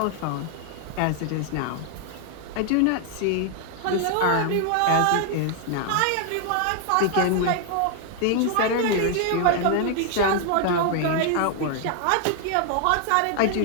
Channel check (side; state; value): both; different; correlation 0.00